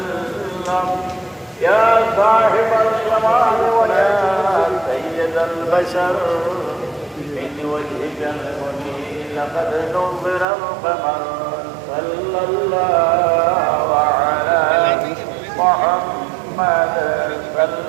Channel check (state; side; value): drops out; left; at 10.5 s